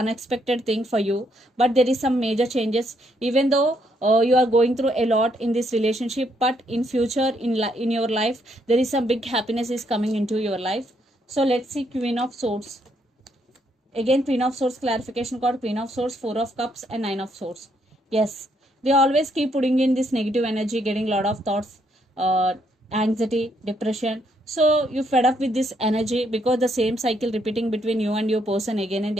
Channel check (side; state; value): both; normal; correlation 0.73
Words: thing for you, but there is some major changes, even though you are going through a lot in this relationship, but in future in your life there is some big happiness is coming into your life. So let's see Queen of Swords. Again, Queen of Swords clarification card, Queen of Swords, Four of Cups and Nine of Swords. Yes, they always keep putting in this negative energy, getting a lot of thoughts, anxiety, depression. So you fed up with this energy because the same cycle repeating between you and your person again and